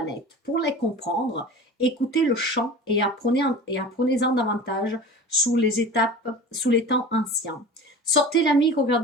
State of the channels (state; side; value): normal; both; correlation 0.36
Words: Pour les comprendre, écoutez le chant et apprenez-en davantage sous les temps anciens. Sortez l'ami,